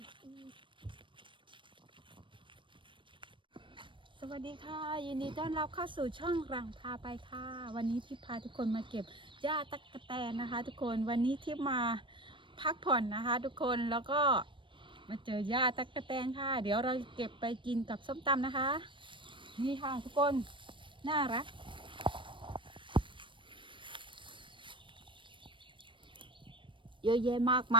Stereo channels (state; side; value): late; left; 0.24 ms